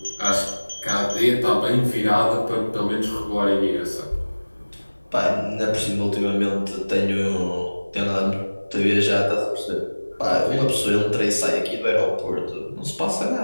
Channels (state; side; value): inverted; both; correlation -1.00